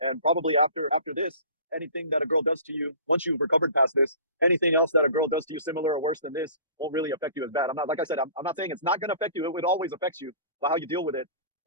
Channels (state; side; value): inverted; both; correlation -0.44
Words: And probably after this, anything that a girl does to you, once you've recovered past this, anything else that a girl does to you similar or worse than this won't really affect you as bad. Like I said, I'm not saying it's not going to affect you. It always affects you. But how you deal with it